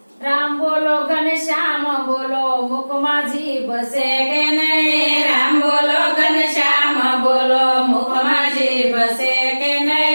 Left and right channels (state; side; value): inverted; both; correlation -1.00